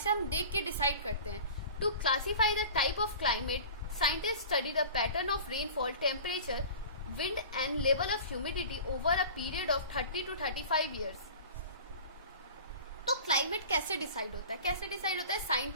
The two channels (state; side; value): inverted; both; correlation -0.39